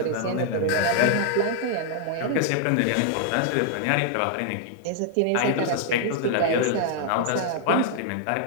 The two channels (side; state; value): both; different; correlation -0.01